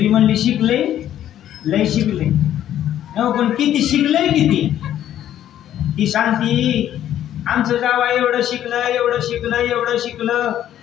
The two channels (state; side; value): quieter; right; 11.4 dB